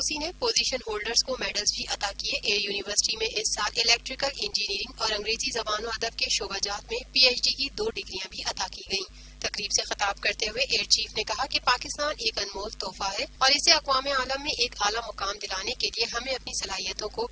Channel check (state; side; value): identical; both; correlation 1.00